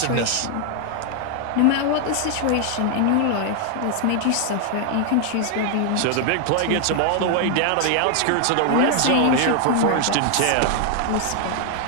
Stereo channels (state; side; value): different; both; correlation 0.00